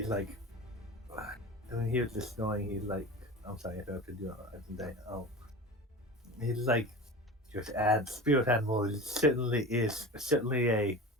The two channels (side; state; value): both; normal; correlation 0.32